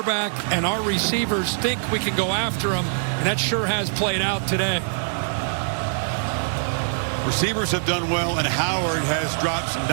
and our receivers think we can go after them, and that sure has played out today. Receivers have done well, and Howard has dropped some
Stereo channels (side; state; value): left; silent; digital silence